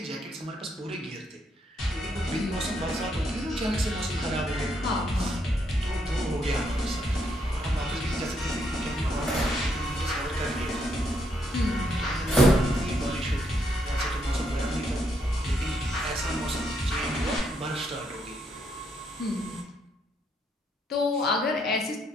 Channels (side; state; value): both; normal; correlation 0.75